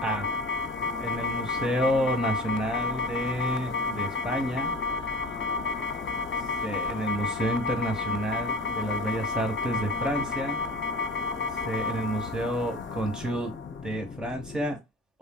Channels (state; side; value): normal; both; correlation 0.38